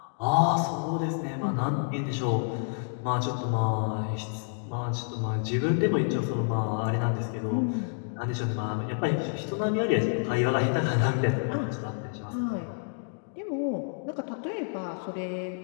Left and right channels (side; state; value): right; silent; digital silence